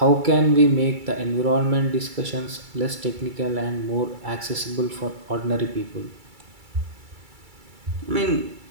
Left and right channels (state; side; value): late; left; 2.3 ms